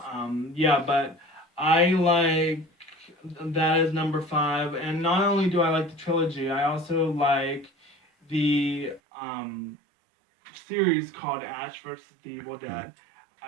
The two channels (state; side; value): drops out; left; at 9.0 s